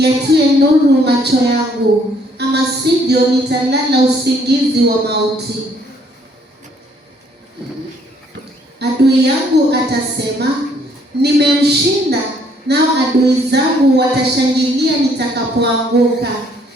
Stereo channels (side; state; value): both; normal; correlation 0.65